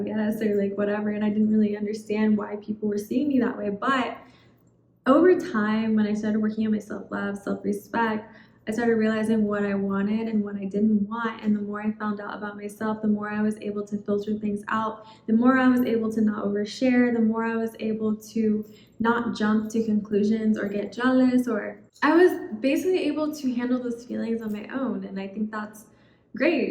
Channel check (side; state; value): both; identical; correlation 1.00